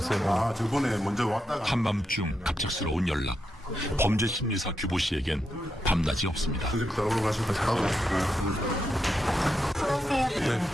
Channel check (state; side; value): normal; both; correlation 0.85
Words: 아, 저번에 먼저 왔다가 한밤중 갑작스러운 연락. 범죄 심리사 규보 씨에겐 밤낮이 없습니다. 따라오러 가시면 잘하고.